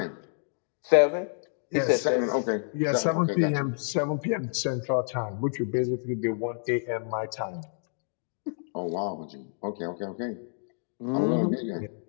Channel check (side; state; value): right; silent; digital silence